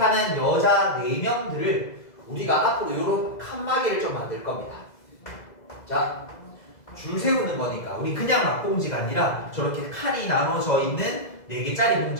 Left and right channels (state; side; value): late; right; 2.0 ms